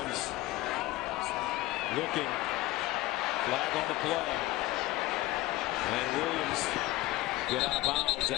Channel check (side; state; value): right; quieter; 18.0 dB